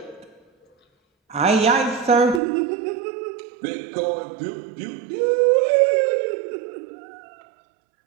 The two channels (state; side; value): drops out; left; at 2.4 s